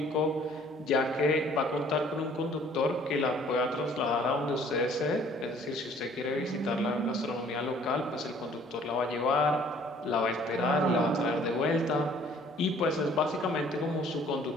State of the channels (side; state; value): both; normal; correlation 0.56